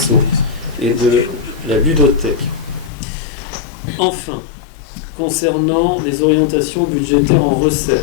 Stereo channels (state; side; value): drops out; right; at 2.9 s